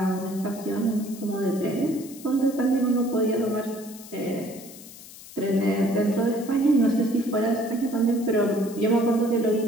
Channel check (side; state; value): left; noise; hiss, 17 dB below the sound